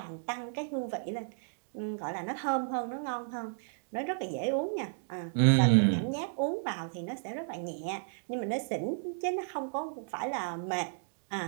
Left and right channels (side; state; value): left; silent; digital silence